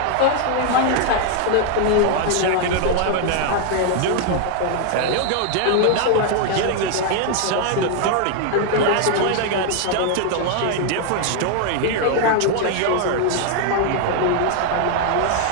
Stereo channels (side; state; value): both; different; correlation 0.00